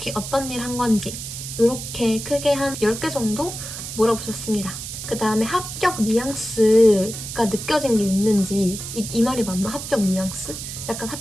어떤 일 한 건지, 이렇게 크게 한 10개 정도 물어보셨습니다. 그 다음에 합격 뉘앙스가 느껴진 게 있는지, 이 말이 맞나? 합격 뉘앙스? 약간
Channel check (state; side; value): noise; right; hiss, 8 dB below the sound